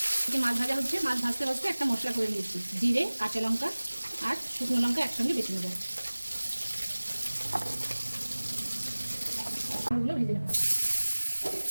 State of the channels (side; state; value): both; inverted; correlation -1.00